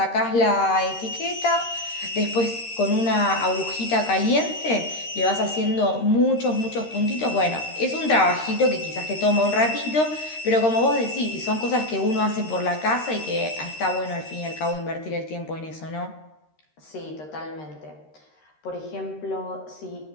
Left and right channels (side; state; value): right; late; 13 ms